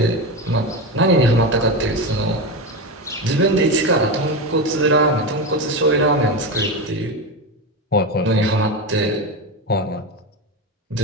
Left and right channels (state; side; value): normal; both; correlation 0.18